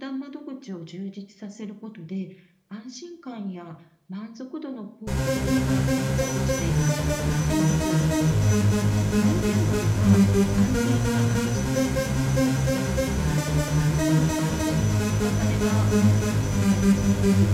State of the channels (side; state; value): both; identical; correlation 1.00